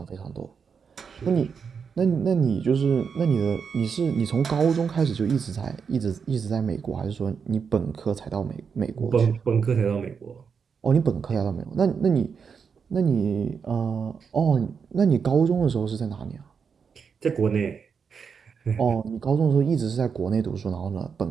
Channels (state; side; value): quieter; left; 6.2 dB